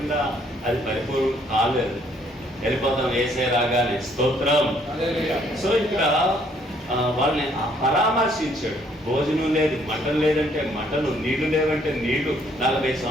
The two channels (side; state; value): both; normal; correlation 0.65